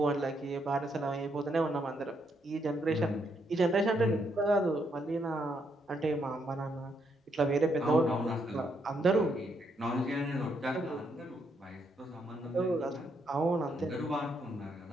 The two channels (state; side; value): normal; both; correlation 0.76